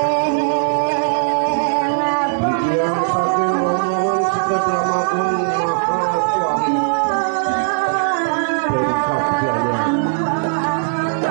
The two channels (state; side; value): silent; left; digital silence